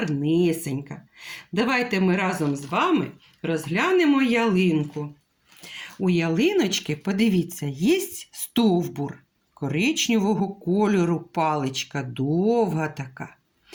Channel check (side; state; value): both; identical; correlation 1.00